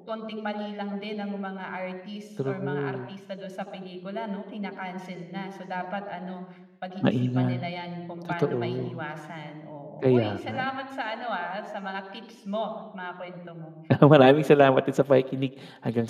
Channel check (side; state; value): both; identical; correlation 1.00